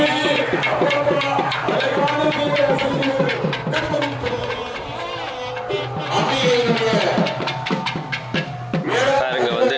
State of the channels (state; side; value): identical; both; correlation 1.00